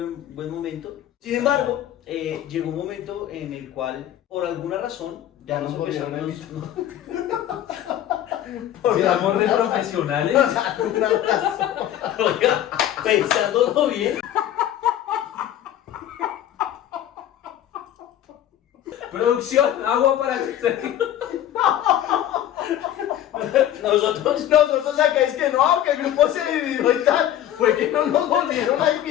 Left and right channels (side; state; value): right; quieter; 11.7 dB